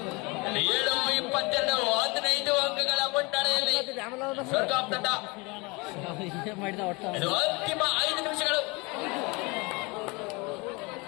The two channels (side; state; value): right; quieter; 26.9 dB